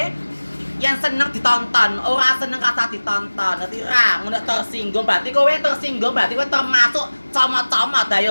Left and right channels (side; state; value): both; inverted; correlation -1.00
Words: yang seneng ditonton, ora seneng kata ditonton, ngerti ra? Ngono tersinggung berarti kowe tersinggung berarti kowe termasuk comot-comot